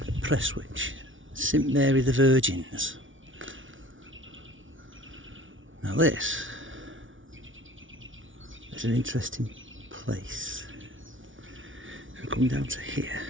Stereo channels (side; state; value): left; late; 0.56 ms